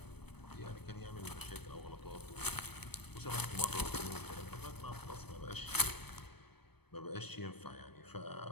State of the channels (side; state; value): right; late; 0.97 ms